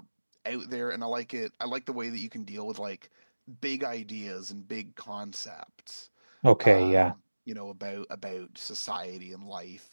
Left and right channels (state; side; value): inverted; both; correlation -1.00